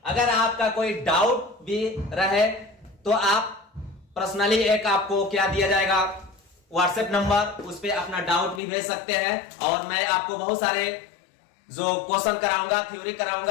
अगर आपका कोई डाउट भी रहे तो आप पर्सनली एक आपको क्या दिया जाएगा व्हाट्सएप नंबर, उस पर अपना डाउट भी भेज सकते हैं और मैं आपको बहुत सारे जो क्वेश्चन कराऊंगा, थ्योरी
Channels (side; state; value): right; drops out; at 8.6 s